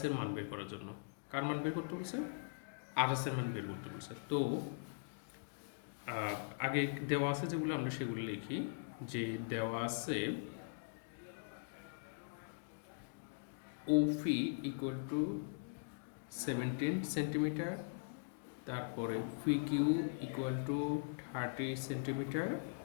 এর মান বের করার জন্য। কার মান বের করতে বলছে? আর এস এর মান বের করতে বলছে। তো আগে দেওয়া আছে যেগুলো আমরা সেগুলো লিখি। যে দেওয়া আছে ওফি ইকুয়াল টু 17 সেন্টিমিটার, তারপরে ফি কিউ ইকুয়াল টু 30 সেন্টিমিটার।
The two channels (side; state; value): right; silent; digital silence